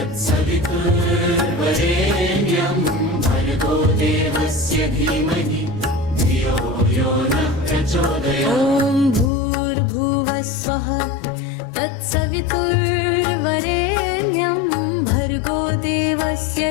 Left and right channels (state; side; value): drops out; right; at 9.3 s